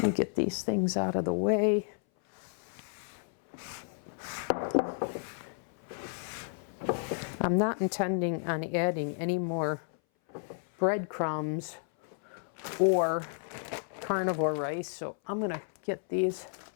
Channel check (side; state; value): right; silent; 56 dB below the other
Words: me get these things out of the way. I'm not intending on adding any more breadcrumbs or carnivore rice, so I'm going to get these